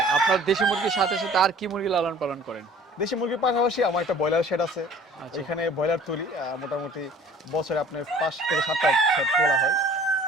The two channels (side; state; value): both; normal; correlation 0.50